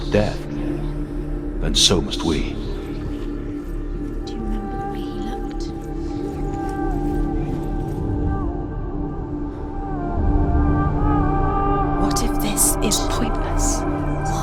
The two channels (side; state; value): both; identical; correlation 1.00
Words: death, then so must we. Do you remember the way he looked? What if this is pointless?